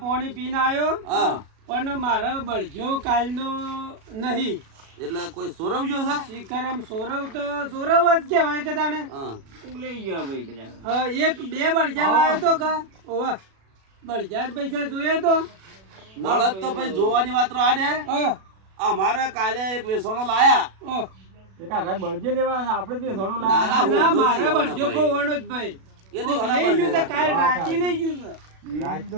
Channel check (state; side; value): late; left; 37 ms